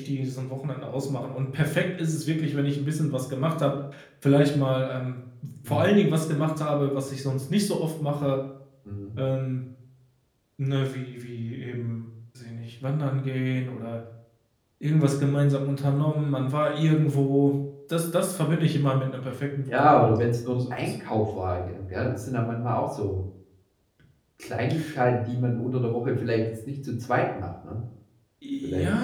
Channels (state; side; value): identical; both; correlation 1.00